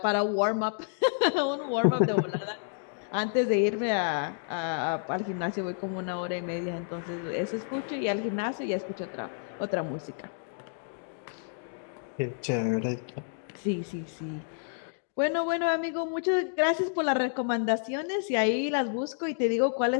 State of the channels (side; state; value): right; silent; digital silence